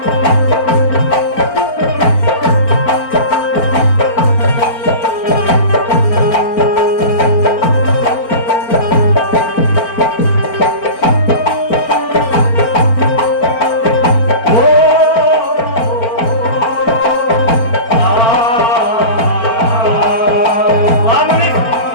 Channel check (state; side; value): late; right; 4.4 ms